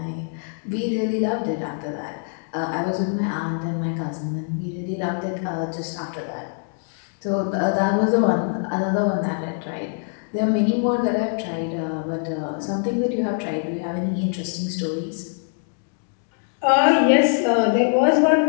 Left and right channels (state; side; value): silent; right; 61 dB below the other